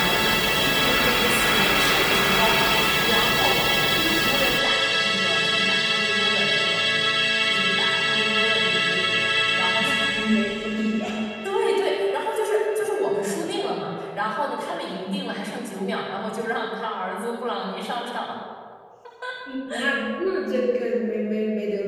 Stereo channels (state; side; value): identical; both; correlation 1.00